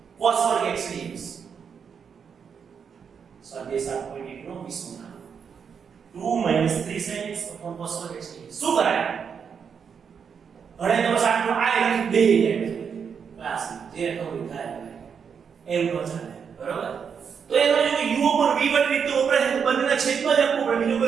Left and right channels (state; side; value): quieter; left; 6.8 dB